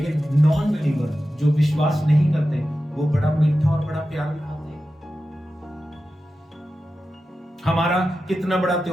नॉन बिलीवर जो विश्वास नहीं करते वो बड़ा मीठा और बड़ा प्यार दिखाते हैं। हमारा कितना बड़ा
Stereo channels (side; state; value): both; normal; correlation 0.92